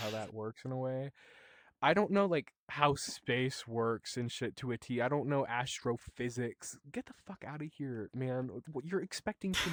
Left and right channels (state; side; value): identical; both; correlation 1.00